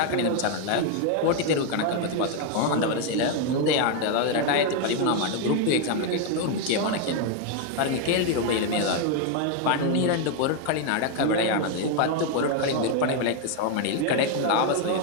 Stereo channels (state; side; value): different; both; correlation 0.01